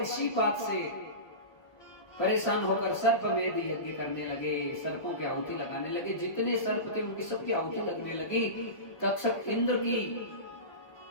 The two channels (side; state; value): right; late; 1.5 ms